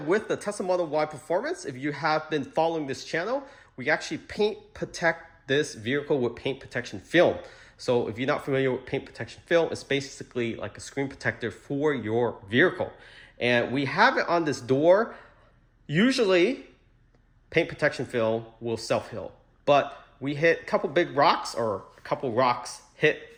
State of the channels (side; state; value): both; identical; correlation 1.00